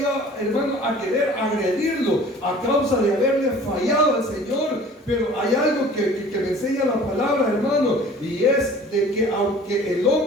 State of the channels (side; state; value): both; normal; correlation 0.47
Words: hermano, a querer agredirlo a causa de haberle fallado al Señor. Pero hay algo que me enseña la palabra, hermano, y es de que aunque el